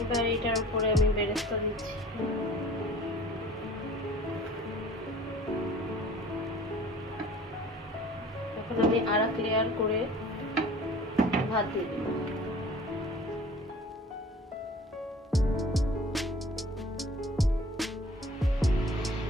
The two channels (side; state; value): both; normal; correlation 0.48